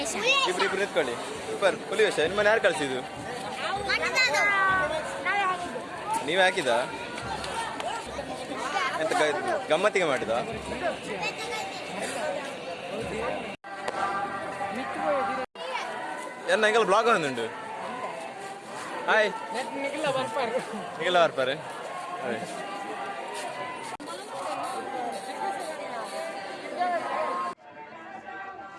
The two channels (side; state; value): both; identical; correlation 1.00